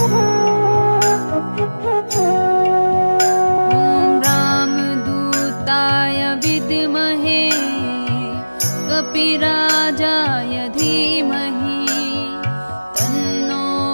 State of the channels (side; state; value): both; inverted; correlation -1.00